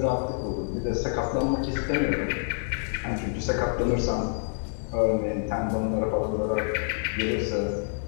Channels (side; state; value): right; silent; digital silence